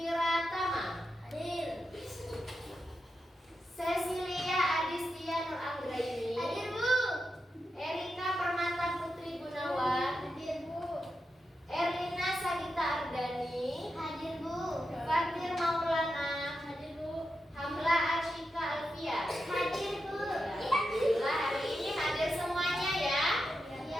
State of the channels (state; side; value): normal; both; correlation 0.88